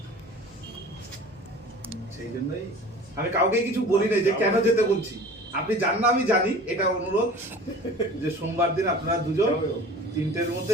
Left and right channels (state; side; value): normal; both; correlation 0.42